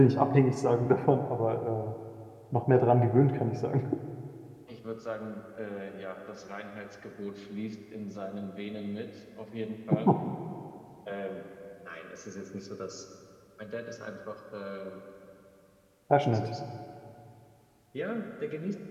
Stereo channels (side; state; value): both; identical; correlation 1.00